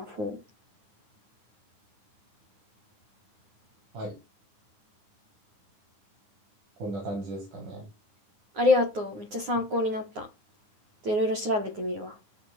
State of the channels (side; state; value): left; late; 9.6 ms